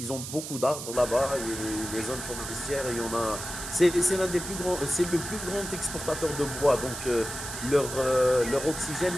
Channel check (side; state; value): right; noise; hiss, 8 dB below the sound